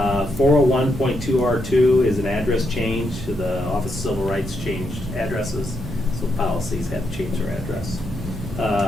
is an address change. The Office of Civil Rights changed addresses, so policies have to change their address.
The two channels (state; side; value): normal; both; correlation 0.80